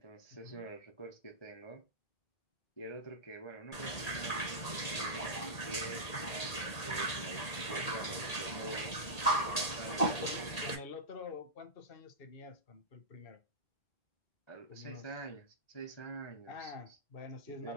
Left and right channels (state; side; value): late; right; 1.8 ms